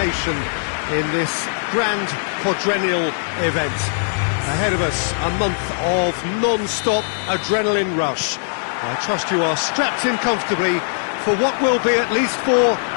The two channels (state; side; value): silent; right; digital silence